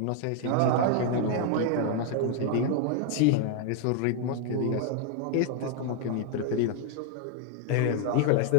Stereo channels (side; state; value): both; different; correlation 0.00